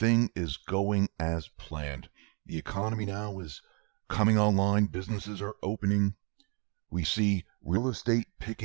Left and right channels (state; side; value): quieter; left; 35.2 dB